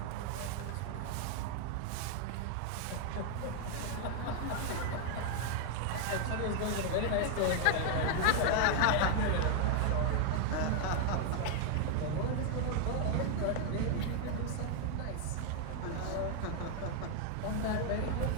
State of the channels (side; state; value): both; different; correlation 0.00